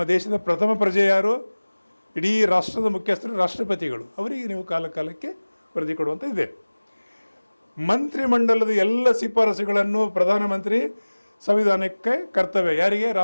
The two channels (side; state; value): both; inverted; correlation -1.00